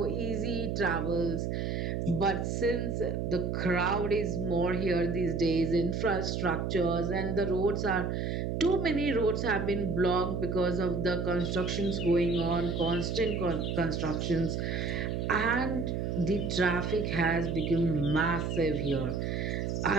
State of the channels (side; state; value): right; noise; hum, 1 dB below the sound